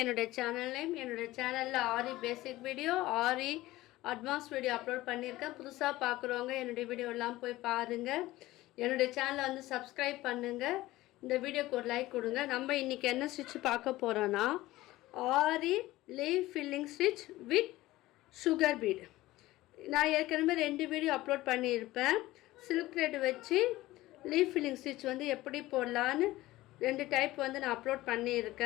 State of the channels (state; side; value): quieter; right; 17.4 dB